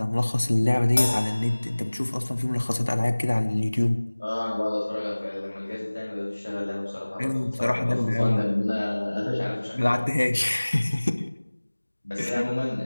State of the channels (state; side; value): inverted; both; correlation -1.00